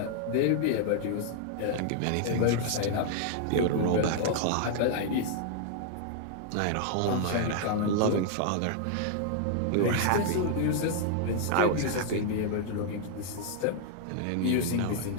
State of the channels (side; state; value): both; different; correlation 0.00